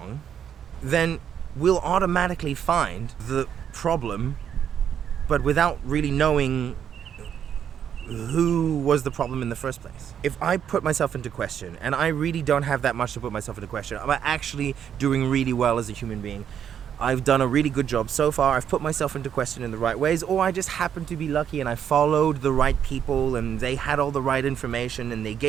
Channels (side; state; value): left; quieter; 8.8 dB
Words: then we'll automatically find the problem, but without really knowing who was the problem in the first place. If I put myself into question, and I really don't have that much to put myself into question, I'm actually doing really well as a human being, I've done a really good job so far. I've put myself into question in the right ways, or I just happened to be lucky and I followed the right people and they had all the right information and they